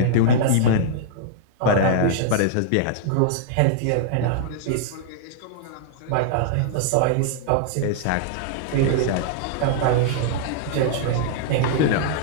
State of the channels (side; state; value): both; different; correlation -0.01